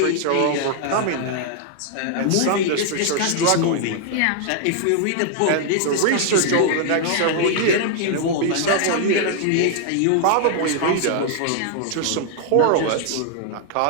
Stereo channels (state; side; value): different; both; correlation 0.00